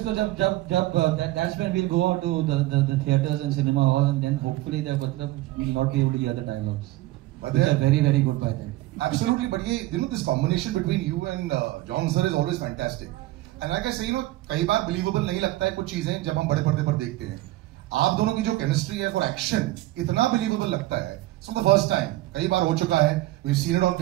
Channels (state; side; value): quieter; left; 17.5 dB